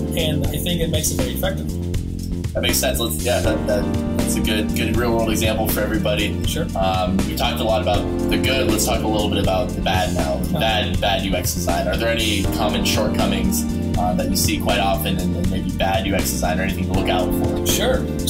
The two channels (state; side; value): identical; both; correlation 1.00